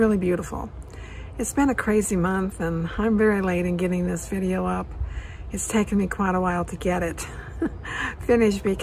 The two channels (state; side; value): identical; both; correlation 1.00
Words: beautiful. It's been a crazy month and I'm very late in getting this video up. It's taken me quite a while to get it finished